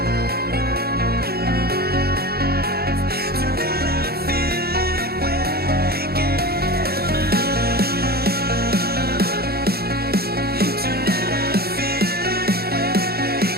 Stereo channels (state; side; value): late; left; 0.46 ms